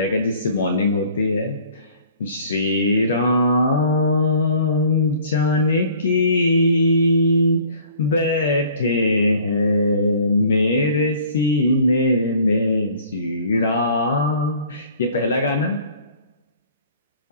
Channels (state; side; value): inverted; both; correlation -0.53